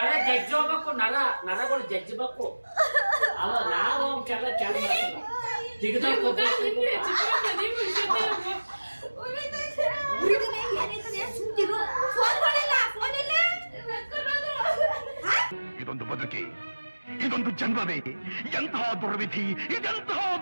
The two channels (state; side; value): inverted; both; correlation -1.00